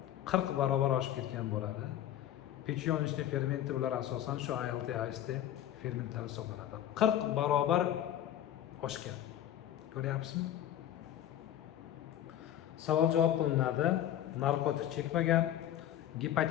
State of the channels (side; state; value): right; quieter; 11.6 dB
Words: 40 barobar oshib ketgan bo'ladi. Pechiyonishli fermenti bular asosan shu ALT, AST fermentlari hisoblanadi. 40 barobar oshgan. Ko'ryapsizmi? Savol javob qilinadi. Narkotik chekmagan,